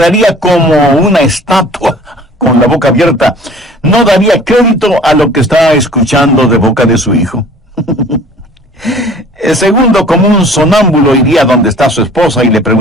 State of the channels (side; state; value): both; normal; correlation 0.49